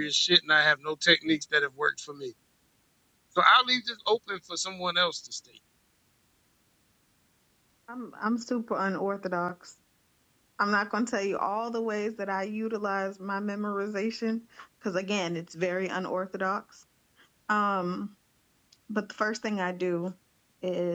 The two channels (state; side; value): identical; both; correlation 1.00